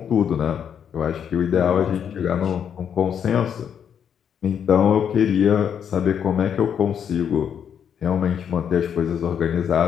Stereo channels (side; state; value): right; quieter; 8.2 dB